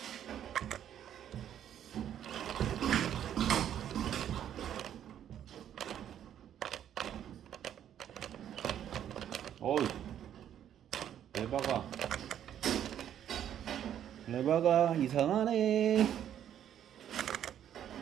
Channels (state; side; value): quieter; left; 10.2 dB